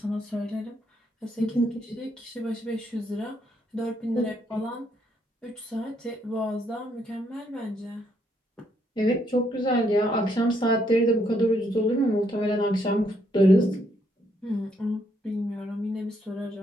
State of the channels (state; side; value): normal; both; correlation 0.73